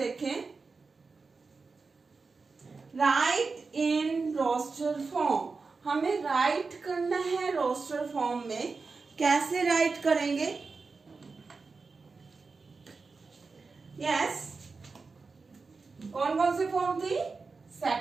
राइट इन रोस्टर फॉर्म, हमें राइट करना है रोस्टर फॉर्म में। कैसे राइट करेंगे? यस, कौन कौन से फॉर्म थी?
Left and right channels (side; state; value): left; quieter; 4.4 dB